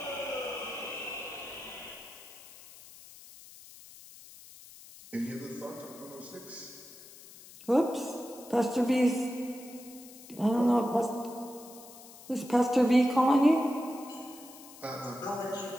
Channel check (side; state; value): left; noise; hiss, 19 dB below the sound